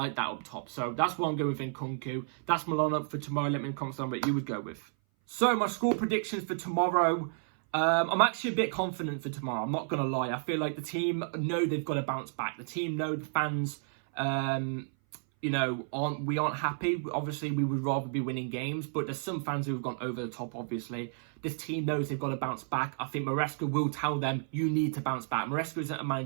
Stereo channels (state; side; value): silent; left; 57 dB below the other